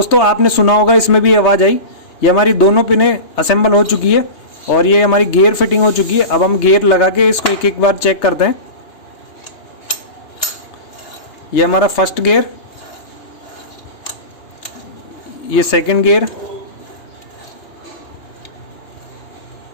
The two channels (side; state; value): right; late; 3.3 ms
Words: आपने सुना होगा इसमें भी आवाज़ आई। ये हमारी दोनों पिनें असेंबल हो चुकी है और ये हमारी गियर फिटिंग हो चुकी है। अब हम गियर लगा के इसको एक एक बार चेक करते हैं। ये हमारा फर्स्ट गियर, ये सेकंड गियर,